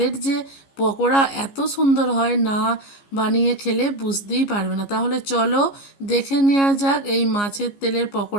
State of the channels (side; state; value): right; late; 15 ms